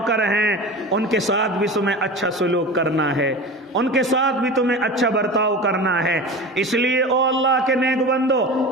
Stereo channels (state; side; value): normal; both; correlation 0.32